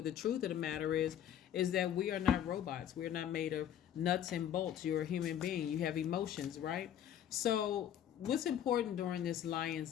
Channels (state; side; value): quieter; right; 10.1 dB